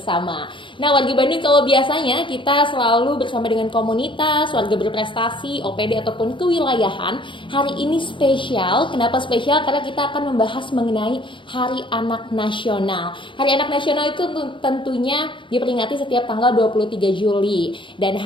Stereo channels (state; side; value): late; right; 0.24 ms